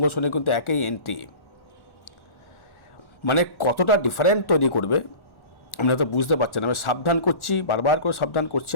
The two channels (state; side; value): late; right; 1.4 ms